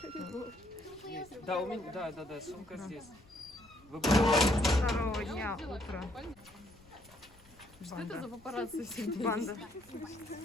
Да, у меня, да, сумка здесь. Второго дня утро. Что это за папарацци всегда? Банда.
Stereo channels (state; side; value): noise; left; rumble, 27 dB below the sound